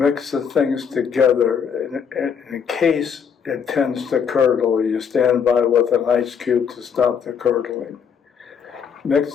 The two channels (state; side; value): quieter; right; 6.9 dB